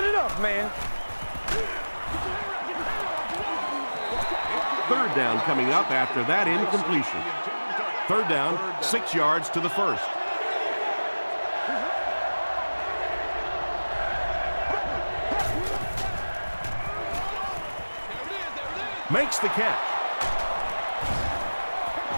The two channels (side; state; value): both; inverted; correlation -1.00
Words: enough, man. 3rd down coming up after that incompletion. 3rd down, 6 yards to the 1st. Makes the catch.